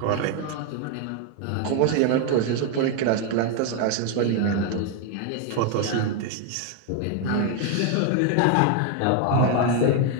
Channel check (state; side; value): different; both; correlation 0.01